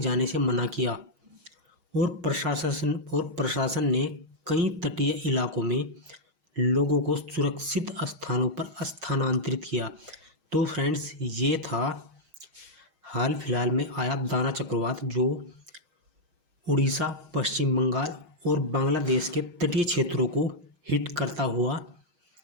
जाने से मना किया और प्रशासन ने कई तटीय इलाकों में लोगों को सुरक्षित स्थानों पर स्थानांतरित किया। तो फ्रेंड्स, ये था हाल फिलहाल में आया दाना चक्रवात जो उड़ीसा, पश्चिम बंगाल और बांग्लादेश के तटीय क्षेत्रों को हिट करता हुआ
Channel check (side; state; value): left; late; 6.3 ms